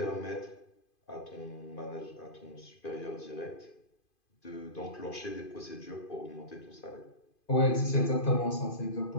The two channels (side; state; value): right; late; 2.5 ms